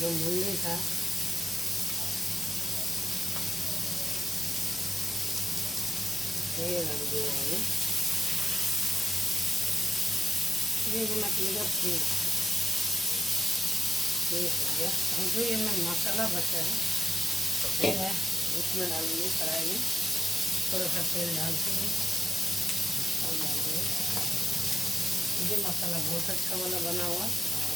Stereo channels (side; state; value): both; normal; correlation 0.92